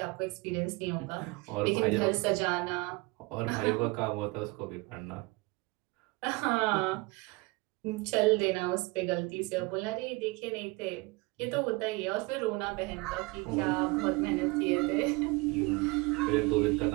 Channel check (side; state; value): left; quieter; 25.5 dB